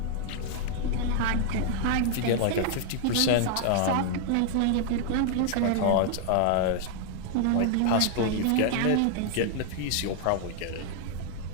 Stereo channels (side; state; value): both; different; correlation 0.00